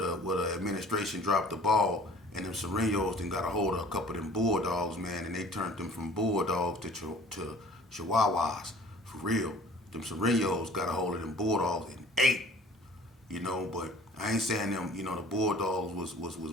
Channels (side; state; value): both; normal; correlation 0.49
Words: administration dropped the ball and them Serenos then got a hold of a couple of them bulldogs, man, and they turned them from bulldogs to chihuahuas for real. Them Serenos got a hold of them bulldogs and ate, but I ain't saying them, the bulldogs was